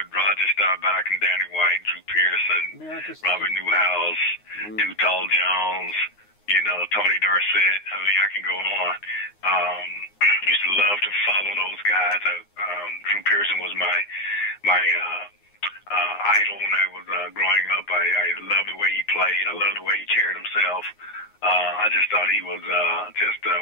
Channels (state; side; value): late; right; 9.7 ms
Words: Roger Staubach and Danny White, Drew Pearson, Robert Newhouse, Tall Jones, you know, Tony Dorsett. I mean, I can go on. Used to love to follow those guys. Drew Pearson was my idol when I was growing up. I loved the way he played. I loved the way he carried himself. I just thought he was just